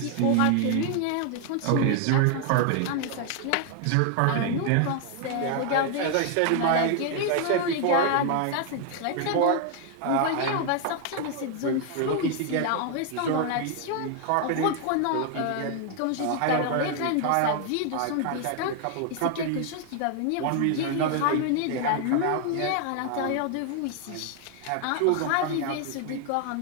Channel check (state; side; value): different; both; correlation 0.00